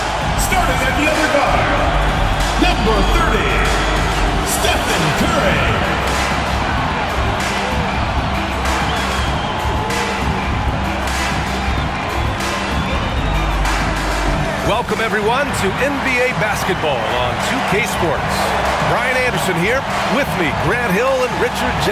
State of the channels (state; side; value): identical; both; correlation 1.00